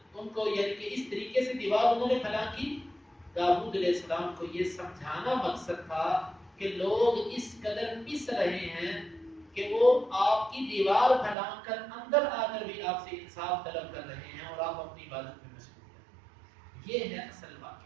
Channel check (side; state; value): left; drops out; at 11.4 s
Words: ان کو یعنی کہ اس طریقے سے دیوار انہوں نے پھلا کی، داؤد علیہ السلام کو یہ سمجھانا مقصد تھا کہ لوگ اس قدر پس رہے ہیں کہ وہ آپ کی دیوار پھیلا کر اندر آ کر بھی آپ سے انصاف طلب کر رہے ہیں اور آپ اپنی عبادت میں مشغول ہیں۔ یہ ہے اصل